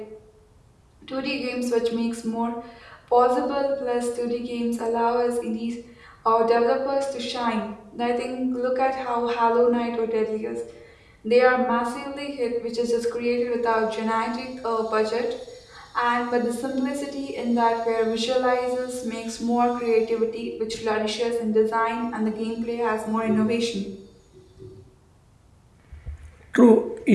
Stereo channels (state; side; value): identical; both; correlation 1.00